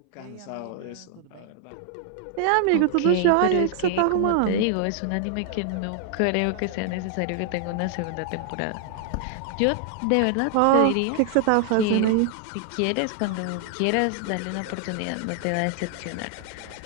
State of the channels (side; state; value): both; different; correlation 0.00